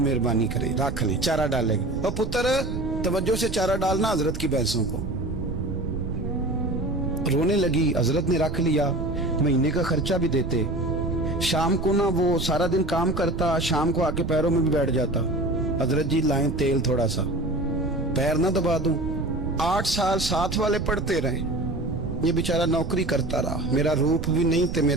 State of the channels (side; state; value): right; noise; rumble, 6 dB below the sound